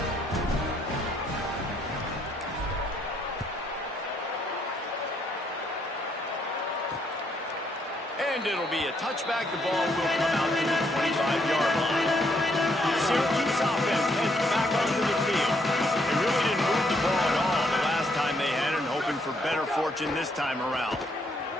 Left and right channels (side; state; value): both; normal; correlation 0.72